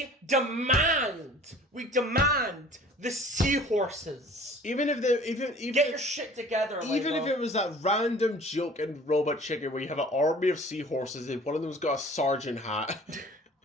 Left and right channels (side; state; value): both; normal; correlation 0.47